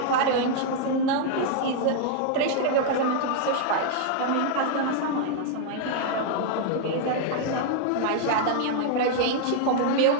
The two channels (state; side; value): different; both; correlation -0.01